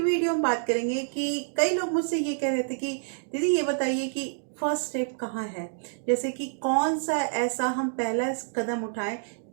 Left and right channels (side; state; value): left; silent; digital silence